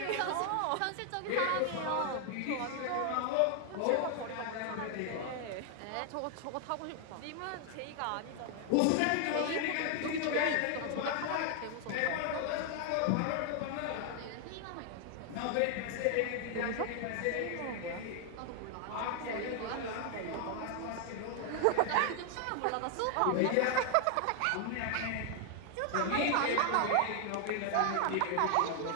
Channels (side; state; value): both; different; correlation 0.00